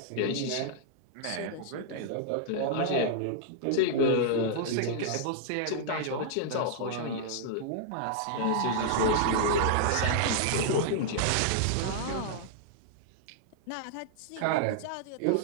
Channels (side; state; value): both; different; correlation -0.01